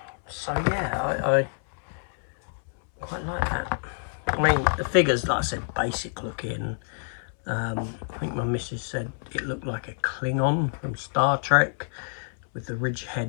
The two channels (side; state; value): right; silent; 59 dB below the other